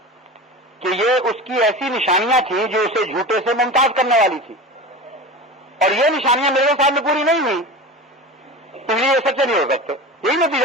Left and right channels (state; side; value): normal; both; correlation 0.31